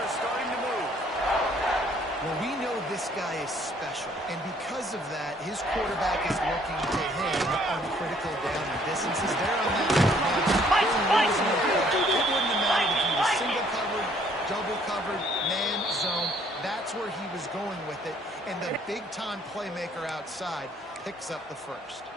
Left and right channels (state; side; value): normal; both; correlation 0.62